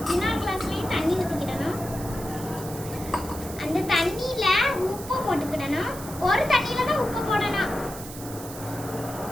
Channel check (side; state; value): right; noise; hiss, 13 dB below the sound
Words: இன்னொரு கிளாஸ்லயும் தண்ணி ஊத்திக்கிடணும். அந்த தண்ணியில உப்பு போட்டுக்கிடணும். ஒரு தண்ணியில தான் உப்பு போடணும்.